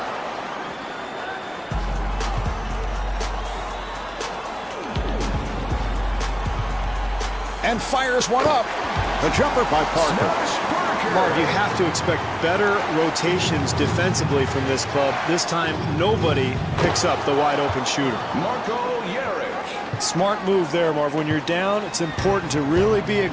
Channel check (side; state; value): both; identical; correlation 1.00